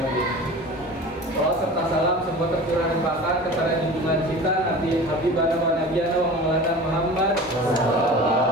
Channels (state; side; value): normal; both; correlation 0.37